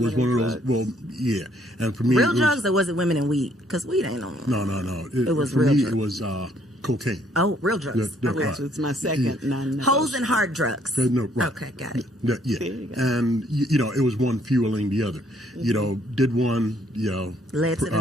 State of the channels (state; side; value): normal; both; correlation 0.66